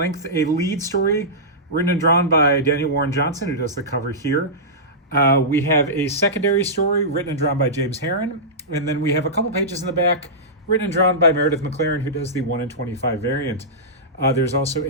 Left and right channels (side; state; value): both; normal; correlation -0.15